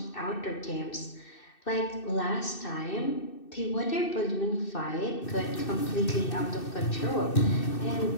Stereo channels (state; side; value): late; right; 2.6 ms